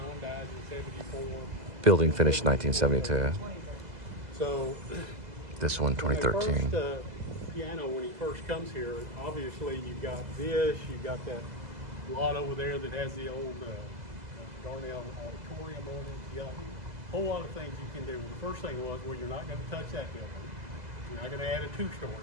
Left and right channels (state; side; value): late; left; 2.0 ms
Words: died in 74. Building finished 1972. So, This one, 2013. First, piano, when he first comes here, obviously you've got this, you've got that lot over there that has the old Darnell Auditorium on it. You got a whole lot of things you can do. The first thing was, well, you're not going to touch that building. You're not going to add a 2-story